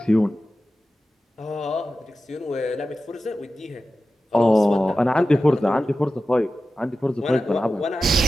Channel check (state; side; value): normal; both; correlation 0.94